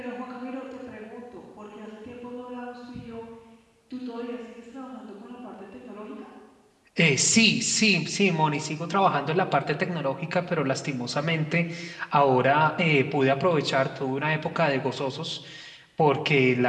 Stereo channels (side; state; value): both; identical; correlation 1.00